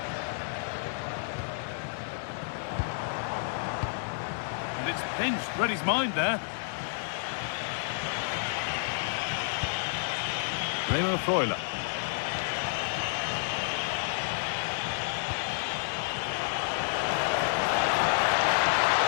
And it's pinched, read his mind there. Remo Freuler.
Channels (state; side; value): silent; right; digital silence